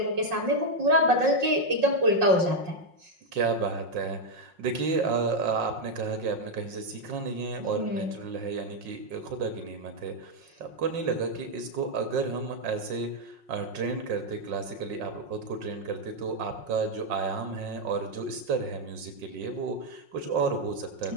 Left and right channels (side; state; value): left; late; 5.5 ms